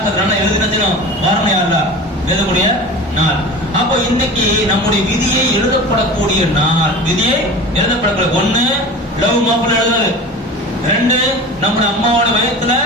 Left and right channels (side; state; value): both; normal; correlation 0.34